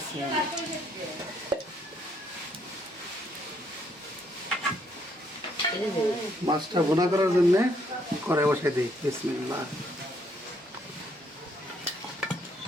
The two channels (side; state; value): both; normal; correlation 0.70